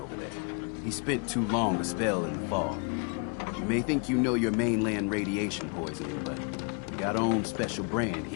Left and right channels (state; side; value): quieter; right; 36.4 dB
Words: there. He spent too long a spell in the fog. You may think you know your mainland radiation poisoning, but we got our own special brand